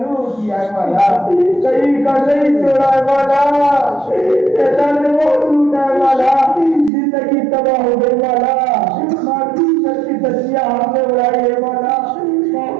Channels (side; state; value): left; drops out; at 6.9 s